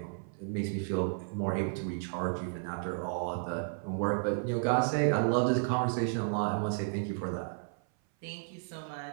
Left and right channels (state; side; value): silent; left; 56 dB below the other